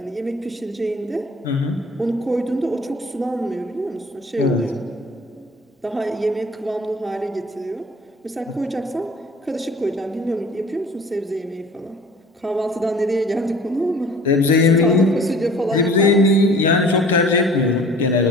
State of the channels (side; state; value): both; normal; correlation 0.48